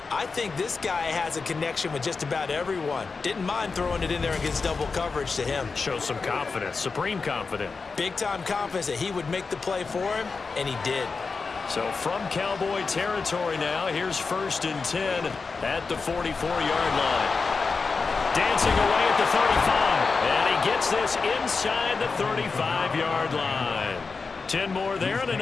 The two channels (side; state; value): right; quieter; 4.6 dB